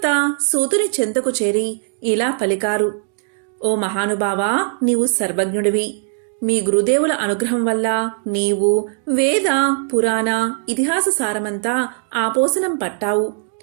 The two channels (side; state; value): left; silent; 61 dB below the other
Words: సూతుని చెంతకు చేరి ఇలా పలికారు. ఓ మహానుభావా, నీవు సర్వజ్ఞుడివి. మీ గురుదేవుల అనుగ్రహం వల్ల నీవు వేద, పురాణ, ఇతిహాస సారమంతా ఆపోసనం పట్టావు.